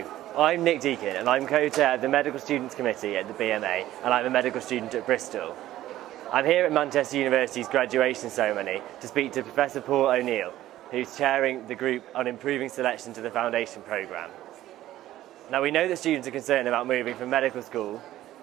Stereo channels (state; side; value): quieter; left; 14.1 dB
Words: I'm Nick Deakin and I'm co-chair of the Medical Students Committee at the BMA, and I'm a medical student at Bristol. I'm here at Manchester University's graduation ceremony to speak to Professor Paul O'Neill, who's chairing the group on improving selection to the foundation programme. Now, we know that students are concerned about moving from medical school